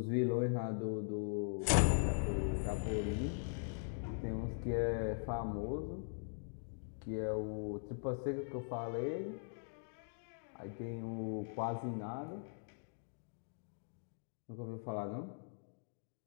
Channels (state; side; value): silent; right; digital silence